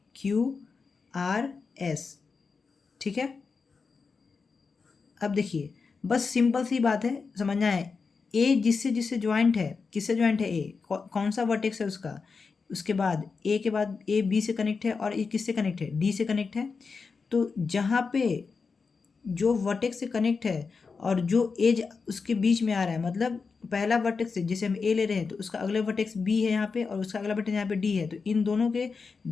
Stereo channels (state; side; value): quieter; right; 4.9 dB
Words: Q R S, ठीक है। अब देखिए, बस सिंपल सी बात है, समझना है। ए जिससे जिससे ज्वाइंट है, किससे ज्वाइंट है? ए कौन सा वर्टेक्स है उसका? उसके बाद ए के बाद ए बी से कनेक्ट है, और ए किससे कनेक्ट है? डी से कनेक्ट है। तो जहाँ पे जो वर्टेक्स से कनेक्ट है और जो एज उसके बीच में आ रहा है, मतलब पहला वर्टेक्स से जैसे हम ए ले रहे हैं तो उसका अगला वर्टेक्स बी है यहाँ पे, और उसका अगला वर्टेक्स यहाँ पे डी है। तो इन